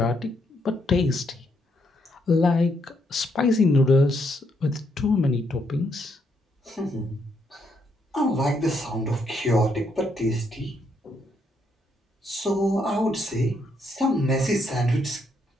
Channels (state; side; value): normal; both; correlation 0.75